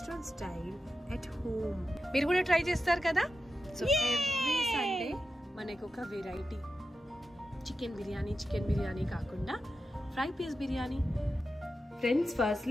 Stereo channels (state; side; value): normal; both; correlation 0.90